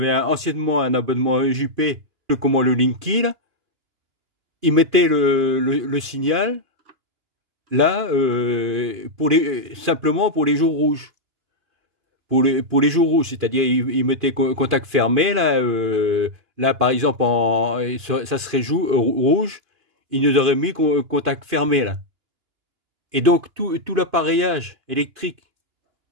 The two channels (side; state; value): left; late; 2.9 ms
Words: anciennement un abonnement EJP, comment le Linky, là, il mettait le signal là simplement pour les jours rouges. Pour les jours rouges, c'est-à-dire il mettait contact fermé là par exemple ça serait rouge, il nous aurait mis contact fermé là. Et donc tout l'appareillage électrique